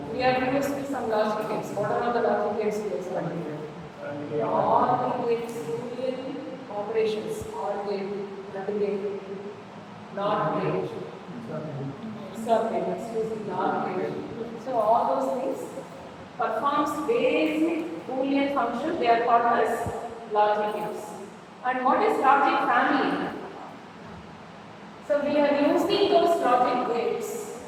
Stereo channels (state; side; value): identical; both; correlation 1.00